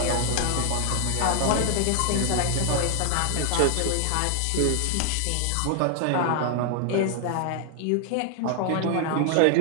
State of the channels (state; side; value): different; both; correlation 0.00